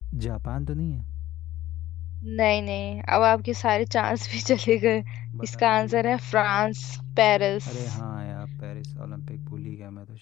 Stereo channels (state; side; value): quieter; right; 14.4 dB